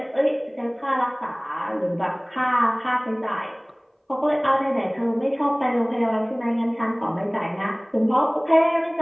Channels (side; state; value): both; identical; correlation 1.00